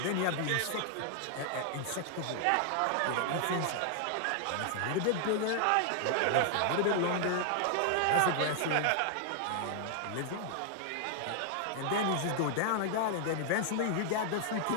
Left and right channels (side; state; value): both; different; correlation 0.00